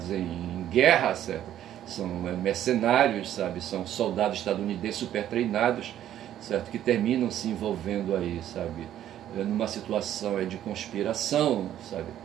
em guerra, certo? São mercenários, sabe? São soldados estadunidenses super treinados, certo? Que terminam se envolvendo aí, sabe? Numa situação de conspiração, sabe?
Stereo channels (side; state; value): left; quieter; 11.6 dB